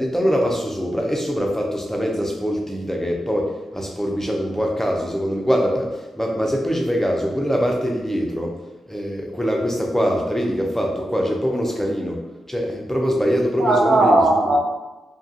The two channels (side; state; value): both; normal; correlation 0.89